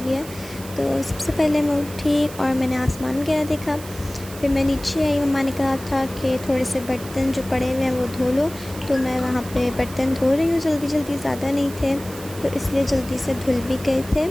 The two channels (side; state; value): right; noise; hiss, 16 dB below the sound